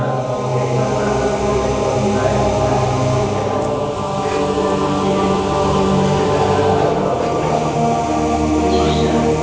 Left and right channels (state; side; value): identical; both; correlation 1.00